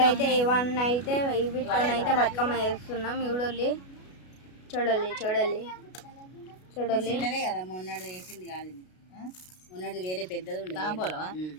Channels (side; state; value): right; late; 33 ms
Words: ఇవన్నైతే వీటితోనైతే బతుకమ్మ వేస్తున్నాం. చూడాలి చూడాలి చూడాలి చూడాలి. మొన్నటి వేసింది కాదు, మొన్నటి వేరే పెద్దది